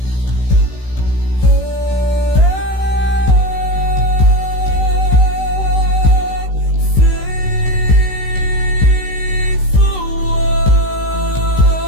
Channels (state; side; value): late; right; 16 ms